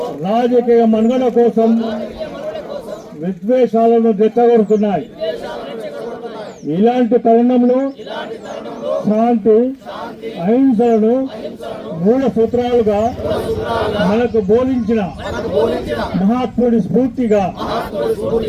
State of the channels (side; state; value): both; identical; correlation 1.00